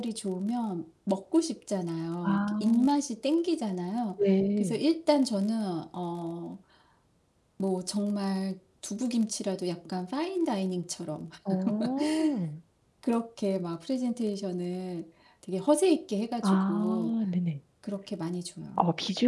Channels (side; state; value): both; identical; correlation 1.00